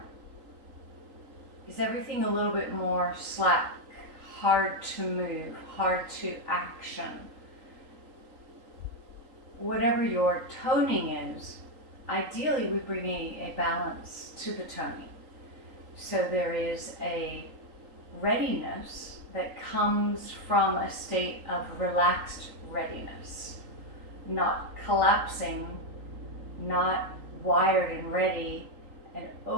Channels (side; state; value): left; late; 3.8 ms